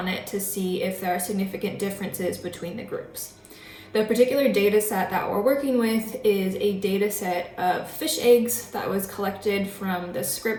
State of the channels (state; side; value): identical; both; correlation 1.00